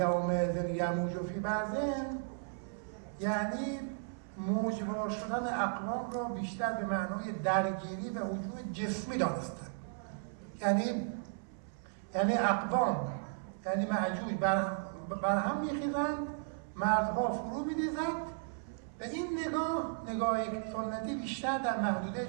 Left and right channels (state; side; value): silent; left; 54 dB below the other